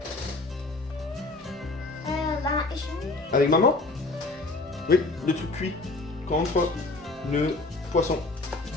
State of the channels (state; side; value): quieter; right; 3.2 dB